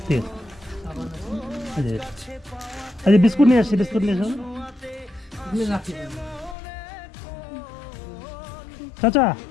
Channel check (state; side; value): drops out; right; at 6.6 s